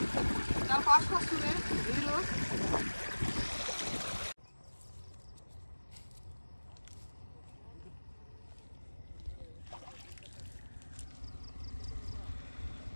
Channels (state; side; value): inverted; both; correlation -1.00